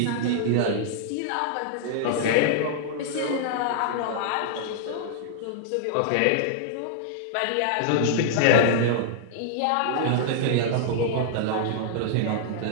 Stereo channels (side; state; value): both; different; correlation -0.01